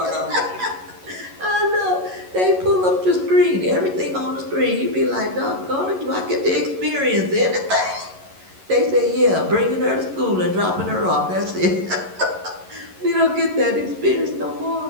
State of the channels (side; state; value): left; late; 11 ms